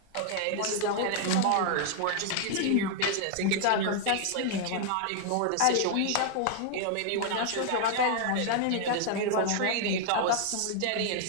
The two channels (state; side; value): different; both; correlation 0.00